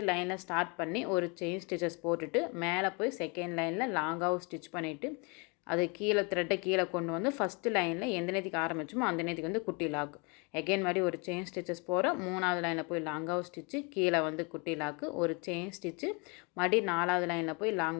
லைனில் ஸ்டார்ட் பண்ணி ஒரு செயின் ஸ்டிச்சஸ் போட்டுட்டு மேலே போய் செகண்ட் லைனில் லாங்காக ஸ்டிச் பண்ணிவிட்டு அது கீழே த்ரெட்டை கீழே கொண்டு வந்து ஃபஸ்ட்டு லைனில் எந்த நேரத்துக்கு ஆரம்பிச்சோமோ அந்த நேரத்துக்கு வந்து குட்டி லாக். எகைன் மாதிரி ஒரு செயின் ஸ்டிச்சஸ் போகிறோம். 3வது லைனில் போய் லாங்காக ஸ்டிச்சு கீழே வந்து குட்டி லாக்கு. ஒரு செயின் ஸ்டிச்சு மறுபடி 4வது லைனில் போய்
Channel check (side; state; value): right; quieter; 31.5 dB